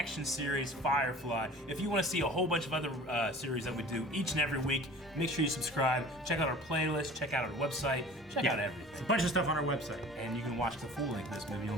series, Firefly. If you want to see a whole bunch of other series that we do each and every week, make sure you subscribe. Check out our playlist. Check out our website. Check out everything. There's a bunch of stuff on our website. And you can watch the full length of this movie on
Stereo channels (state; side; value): normal; both; correlation 0.43